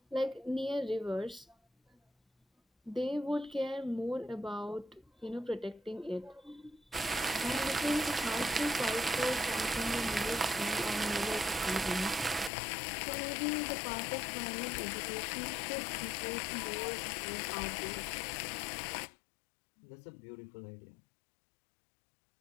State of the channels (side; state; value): right; drops out; at 12.5 s